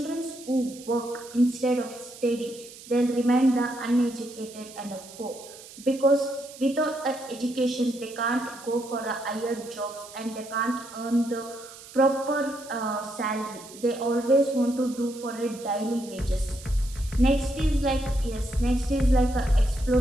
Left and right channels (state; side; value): noise; right; hiss, 17 dB below the sound